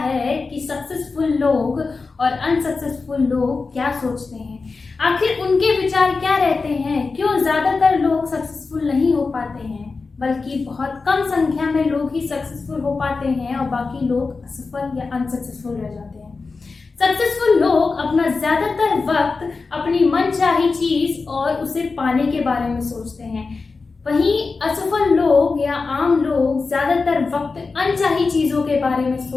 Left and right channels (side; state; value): right; quieter; 4.2 dB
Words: कि सक्सेसफुल लोग और अनसक्सेसफुल लोग क्या सोचते हैं, आखिर उनके विचार क्या रहते हैं, क्यों ज्यादातर लोग सक्सेसफुल नहीं हो पाते हैं, बल्कि बहुत कम संख्या में लोग ही सक्सेसफुल हो पाते हैं और बाकी लोग असफल या अनसक्सेसफुल रह जाते हैं। सक्सेसफुल लोग अपना ज्यादातर वक्त अपनी मनचाही चीज और उसे पाने के बारे में सोचते हैं, वहीं असफल लोग या आम लोग ज्यादातर वक्त अनचाही चीजों के बारे में